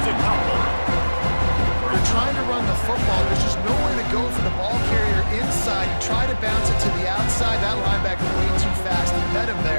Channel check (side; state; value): both; inverted; correlation -1.00